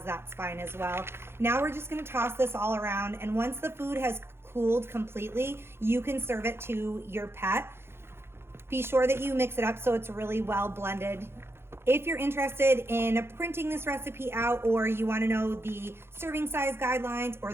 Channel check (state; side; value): late; left; 0.12 ms